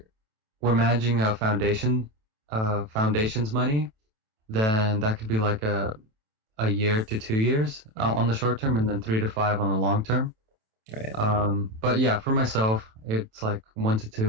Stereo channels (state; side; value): late; left; 27 ms